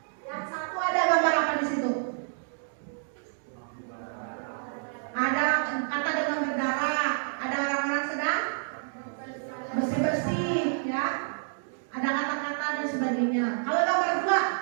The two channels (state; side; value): silent; left; digital silence